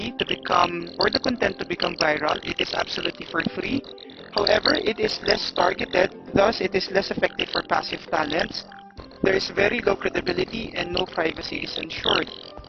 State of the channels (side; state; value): both; identical; correlation 1.00